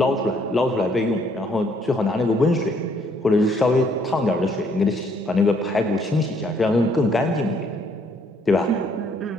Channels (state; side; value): normal; both; correlation 0.66